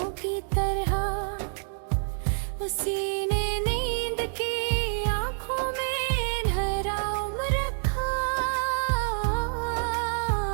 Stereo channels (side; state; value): left; silent; 60 dB below the other